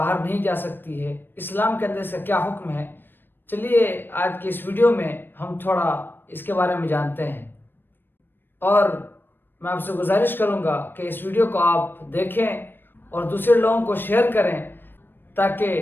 نہیں جا سکتی ہے؟ اسلام کے اندر اس کا کیا حکم ہے؟ چلیے آج کی اس ویڈیو میں ہم تھوڑا اس کے بارے میں جانتے ہیں، اور میں آپ سے گزارش کروں گا کہ اس ویڈیو کو آپ دیکھیں اور دوسرے لوگوں کو شیئر کریں،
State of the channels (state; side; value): late; right; 0.096 ms